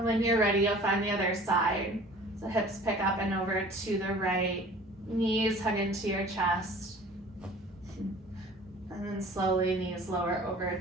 when you're ready, you'll find the other side. So hips pick up and over to the right, knees hug into your chest. And then slowly knees lower over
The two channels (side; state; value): both; normal; correlation 0.47